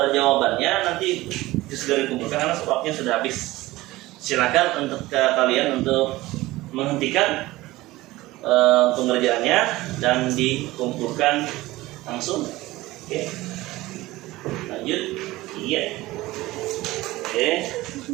jawabannya nanti segera dikumpulkan karena waktunya sudah habis. Silakan untuk kalian untuk menghentikan pengerjaannya dan dikumpulkan langsung. Oke. Lanjut. Iya. Oke.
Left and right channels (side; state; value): left; quieter; 18.4 dB